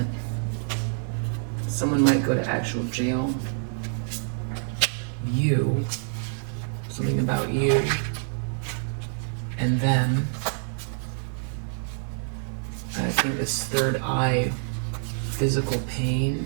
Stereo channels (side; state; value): left; silent; digital silence